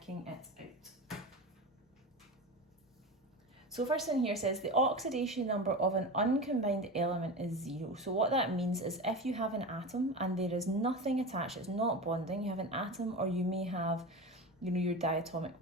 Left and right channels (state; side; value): normal; both; correlation 0.26